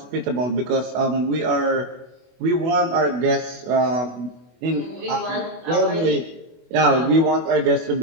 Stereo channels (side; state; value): left; late; 24 ms